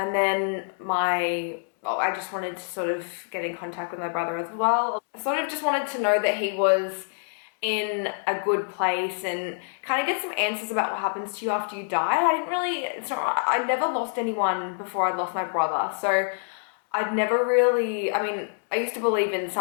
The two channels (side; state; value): right; silent; digital silence